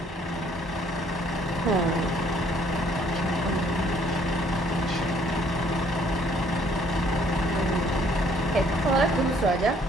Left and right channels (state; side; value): normal; both; correlation 0.62